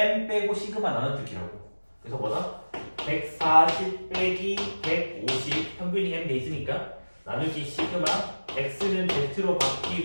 빼고 시그마 나눠주기라고. 그래서 뭐다? 140 빼기 150 평균이 M 돼 있으니까 나누기 시그마 X는 Z로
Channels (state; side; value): inverted; both; correlation -1.00